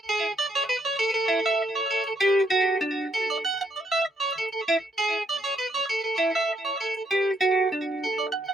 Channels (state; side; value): normal; both; correlation 0.73